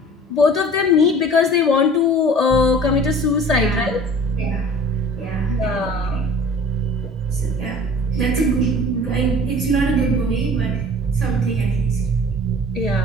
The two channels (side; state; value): both; normal; correlation 0.45